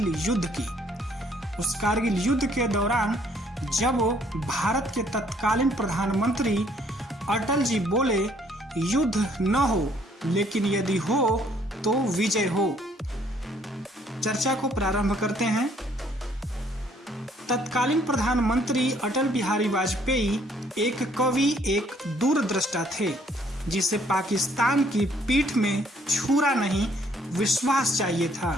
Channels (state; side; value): normal; both; correlation 0.64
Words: युद्ध की। उस कारगिल युद्ध के दौरान जब भारत के तत्कालीन प्रधानमंत्री अटल जी बोले, युद्ध न हो लेकिन यदि हो तो विजय हो। चर्चा को प्रारंभ करते हैं। तत्कालीन प्रधानमंत्री अटल बिहारी वाजपेयी एक कवि, एक दूरदृष्टा थे, जिसे पाकिस्तान की पीठ में छुरा नहीं विश्वास चाहिए था।